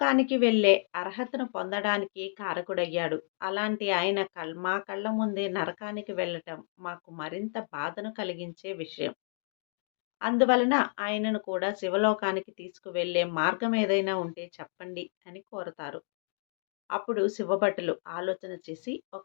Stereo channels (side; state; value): right; silent; digital silence